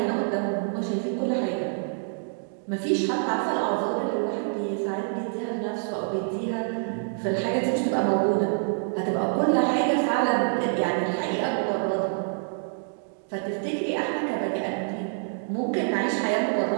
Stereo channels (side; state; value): left; silent; digital silence